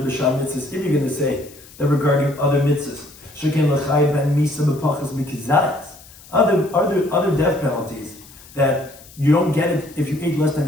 to say that regarding other mitzvahs, shekin l'chayv ben misa b'pachas mikizayas, other death penalties that you don't get it if you ate less than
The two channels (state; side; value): noise; left; hiss, 22 dB below the sound